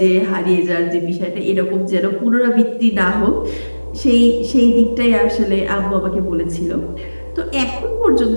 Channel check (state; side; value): inverted; both; correlation -1.00